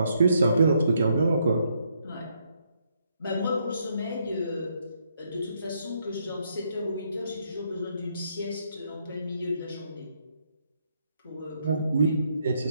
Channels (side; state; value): both; inverted; correlation -0.75